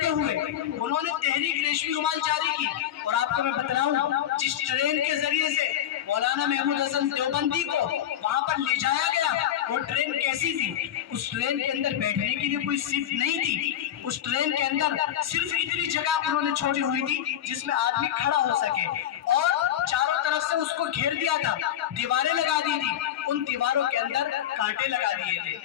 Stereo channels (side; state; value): right; quieter; 10.9 dB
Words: ہوئے انہوں نے تحریک ریشمی رومال جاری کی۔ اور آپ کو میں بتلاؤں، جس ٹرین کے ذریعے سے مولانا محمود حسن دیوبندی کو وہاں پر لے جایا گیا، وہ ٹرین کیسی تھی؟ اس ٹرین کے اندر بیٹھنے کے لیے کوئی سیٹ نہیں تھی، اس ٹرین کے اندر صرف اتنی جگہ انہوں نے چھوڑی ہوئی تھی جس میں آدمی کھڑا ہو سکے، اور چاروں طرف سے اس کو گھیر دیا تھا، دیواریں لگا دی تھی، ان دیواروں کے اندر کانٹے لگا دیے تھے،